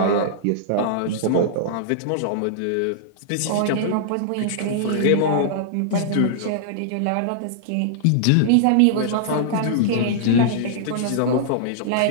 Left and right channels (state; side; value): different; both; correlation -0.02